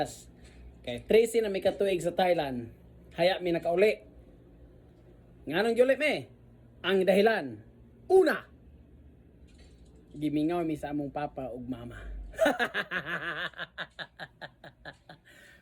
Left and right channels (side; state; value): both; identical; correlation 1.00